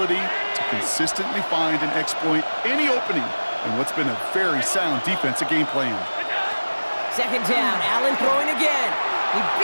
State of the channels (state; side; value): inverted; both; correlation -1.00